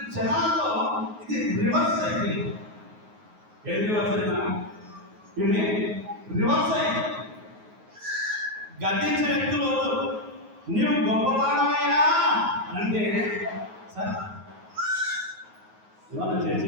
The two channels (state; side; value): late; left; 9.4 ms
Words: జనాల్లో ఇది రివర్స్ అయింది. ఏది రివర్స్ అయినా? ఇది రివర్స్ అయింది. గద్దించే వ్యక్తులు నీవు గొప్పవాడమయ్యా అంటే, సార్ ఇవాళ